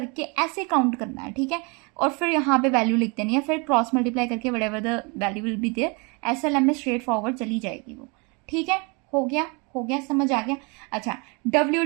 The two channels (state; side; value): quieter; left; 30.9 dB